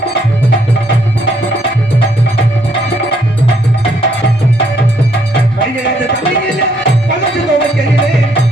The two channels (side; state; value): both; normal; correlation 0.70